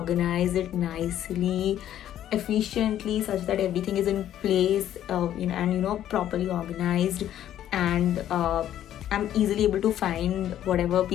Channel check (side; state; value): right; quieter; 11.5 dB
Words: it nicely, efficiently, such that everything is in place, and properly organized, and I'm easily able to find whatever